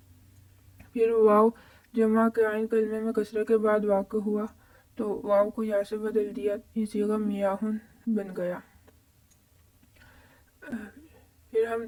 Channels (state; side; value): identical; both; correlation 1.00